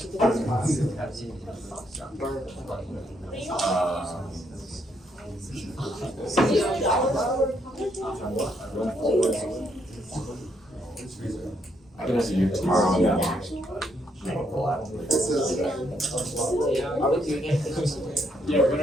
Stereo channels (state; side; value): normal; both; correlation 0.74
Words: I can have you tomorrow. Yeah. Are we doing it? Yeah, we're